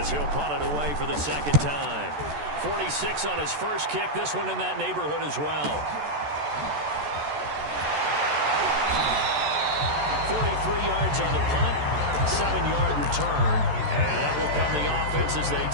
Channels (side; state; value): left; late; 14 ms